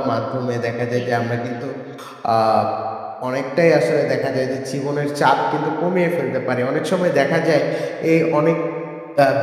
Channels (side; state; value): both; identical; correlation 1.00